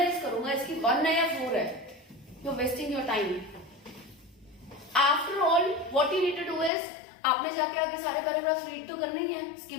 करूंगा इसकी 1 है या 4 है, you are wasting your time. After all what you need to do is, आपने जाके आगे सारे पैराग्राफ रीड तो करने ही है,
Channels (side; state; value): right; drops out; at 6.7 s